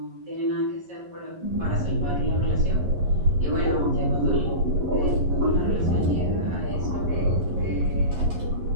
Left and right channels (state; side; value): late; left; 11 ms